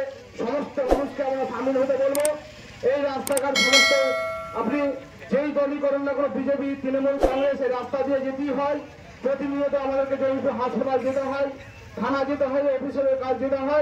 সমস্ত মানুষকে আমরা সামিল হতে বলবো। এই রাস্তাঘাট সমস্ত আপনি যেই দলই করেন না কোনো, বিজেপি, তৃণমূল, কংগ্রেস, এই রাস্তা দিয়ে যেতেই হয়। প্রতিনিয়ত আমাদেরকে জয়পুর হাসপাতাল যেতে হয়, থানা যেতে হয়, অফিসের কাজ যেতে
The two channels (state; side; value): identical; both; correlation 1.00